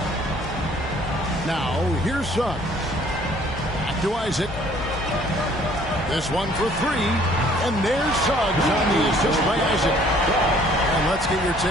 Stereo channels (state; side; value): normal; both; correlation 0.58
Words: Now, here's Suggs. Back to Isaac. This one for three. And there's Suggs on the assist by Isaac. And let's get your